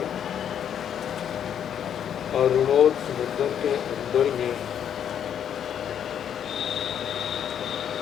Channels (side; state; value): right; quieter; 9.0 dB